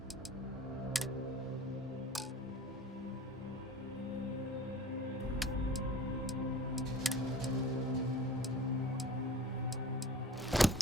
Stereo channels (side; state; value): both; normal; correlation 0.41